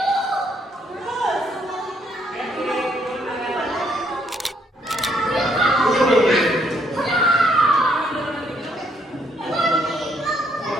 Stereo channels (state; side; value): normal; both; correlation 0.70